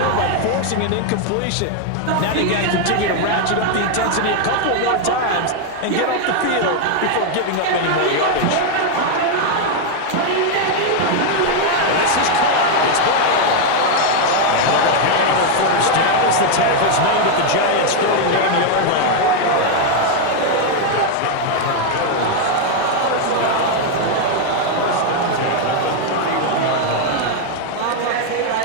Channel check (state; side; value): different; both; correlation 0.00